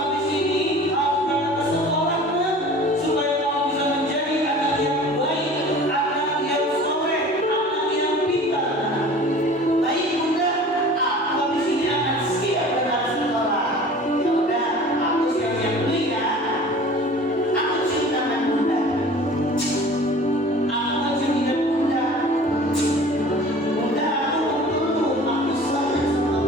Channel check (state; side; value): normal; both; correlation 0.43